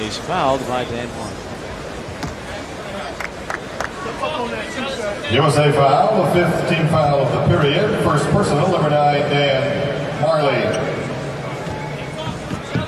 he's fouled by Dan Majerle. USA foul, the 5th team foul of the period. First personal, number 9, Dan Majerle.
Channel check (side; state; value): both; identical; correlation 1.00